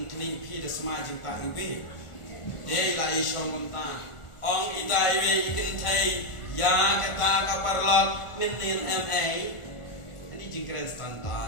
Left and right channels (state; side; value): late; right; 1.4 ms